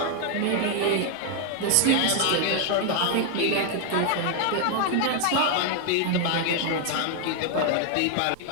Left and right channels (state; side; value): different; both; correlation 0.00